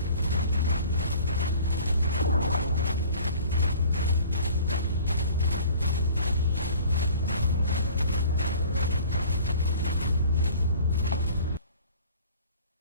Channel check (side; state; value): both; inverted; correlation -0.48